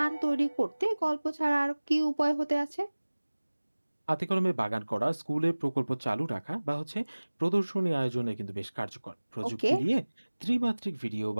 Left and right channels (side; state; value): both; inverted; correlation -1.00